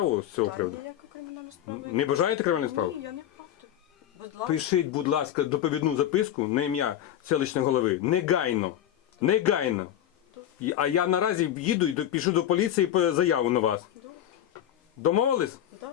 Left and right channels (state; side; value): quieter; right; 11.1 dB